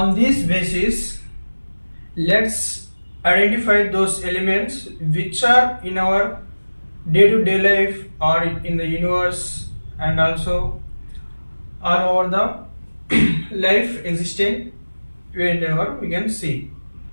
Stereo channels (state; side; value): inverted; both; correlation -1.00